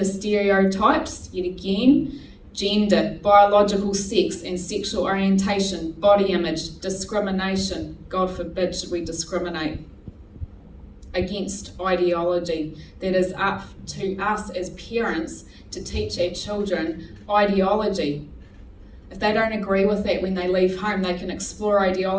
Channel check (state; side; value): identical; both; correlation 1.00